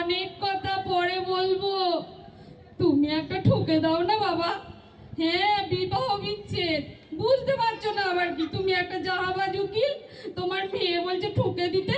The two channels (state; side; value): identical; both; correlation 1.00